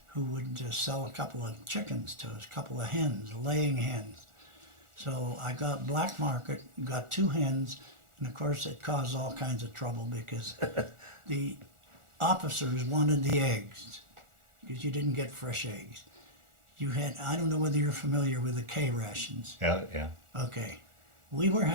who would sell a couple of chickens to us, a couple of hens, laying hens. So I got black market, got 2 hens, and of course it caused all kinds of trouble because the officers wanted the eggs because you didn't get fresh eggs. You had, I don't know whether you're familiar with the K rations. Yeah, yeah. Okay, we were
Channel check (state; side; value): late; left; 1.4 ms